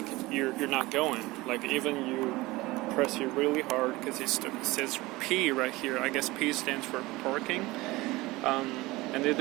going. Like, even you press it really hard, because it says P right here. I guess P stands for parking. And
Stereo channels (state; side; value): quieter; left; 20.6 dB